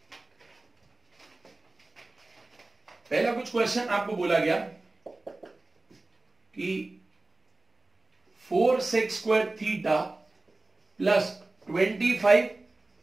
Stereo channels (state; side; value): quieter; left; 3.0 dB